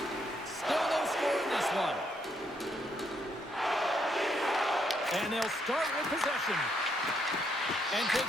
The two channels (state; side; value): normal; both; correlation 0.75